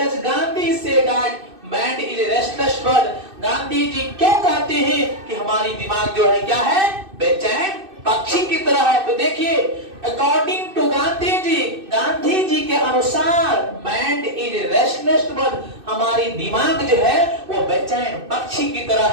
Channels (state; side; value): late; left; 2.6 ms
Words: Gandhi say that man is restless bird. Gandhi ji क्यों कहते हैं कि हमारी दिमाग जो है क्या है? बेचैन पक्षी की तरह है। तो देखिए अकॉर्डिंग टू गांधी जी, गांधी जी के अनुसार मैन इज रेस्टलेस बर्ड, हमारी दिमाग जो है वो बेचैन पक्षी की तरह